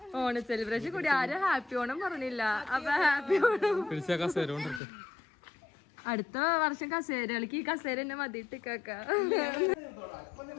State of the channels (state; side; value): drops out; right; at 4.8 s